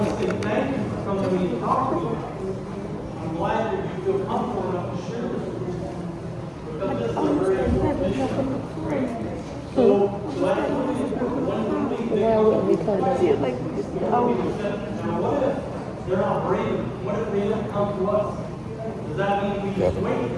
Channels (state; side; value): identical; both; correlation 1.00